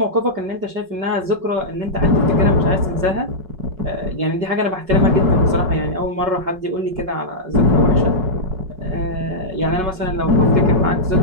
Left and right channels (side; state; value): left; late; 5.3 ms